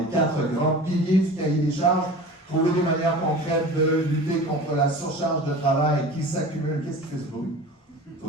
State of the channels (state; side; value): normal; both; correlation 0.37